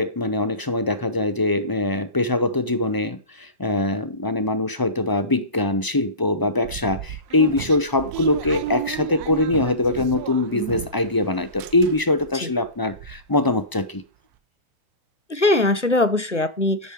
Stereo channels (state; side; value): late; right; 1.0 ms